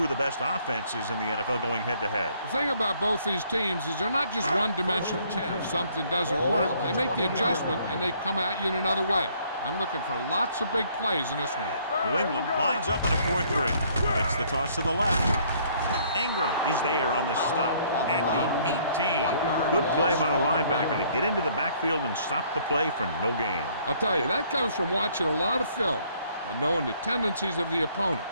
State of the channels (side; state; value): both; inverted; correlation -0.63